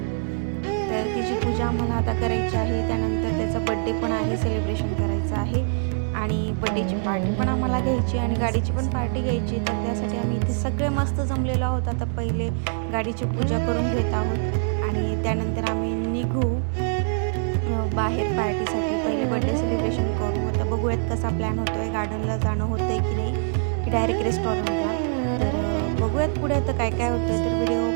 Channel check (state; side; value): silent; left; 62 dB below the other